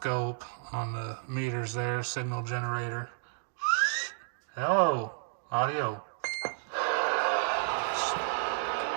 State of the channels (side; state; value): left; silent; digital silence